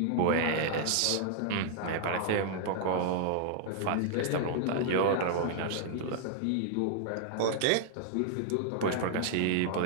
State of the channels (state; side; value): different; both; correlation 0.00